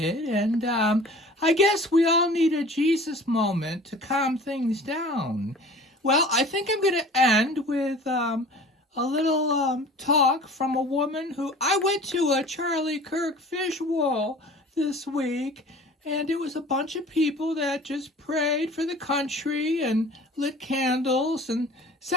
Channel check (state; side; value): normal; both; correlation 0.44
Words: and I guess we all need a Jesus moment to calm things down. Well, I think I'm going to end with a little talk from a woman who... I went to a Charlie Kirk visual this week, and it was a bunch of people that just prayed for the country and lit candles and